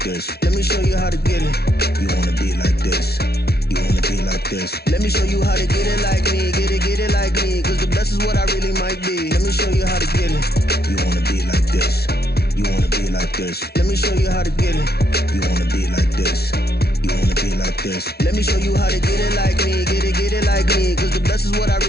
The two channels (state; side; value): late; right; 0.46 ms